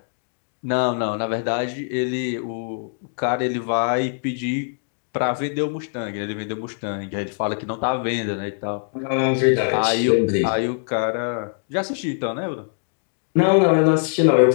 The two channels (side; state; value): right; silent; digital silence